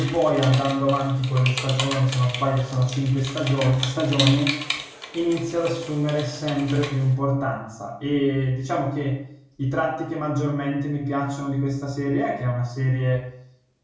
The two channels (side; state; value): both; identical; correlation 1.00